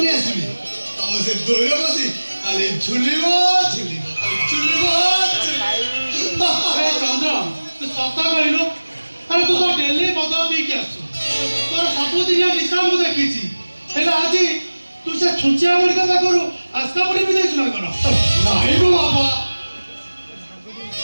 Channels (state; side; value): inverted; both; correlation -1.00